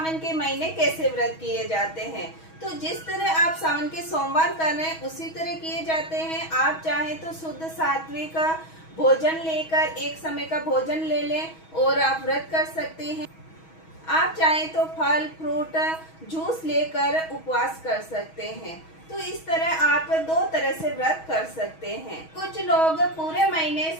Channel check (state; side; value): late; right; 6.2 ms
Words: के महीने कैसे व्रत किए जाते हैं। तो जिस तरह आप सावन के सोमवार कर रहे हैं उसी तरह किए जाते हैं। आप चाहें तो शुद्ध सात्विक भोजन लेकर एक समय का भोजन ले लें और आप व्रत कर सकते हैं। आप चाहें तो फल फ्रूट जूस लेकर उपवास कर सकते हैं। तो इस तरह आप दो तरह से व्रत कर सकते हैं। कुछ लोग पूरे महीने